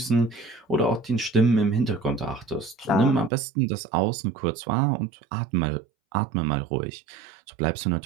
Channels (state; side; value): drops out; left; at 3.3 s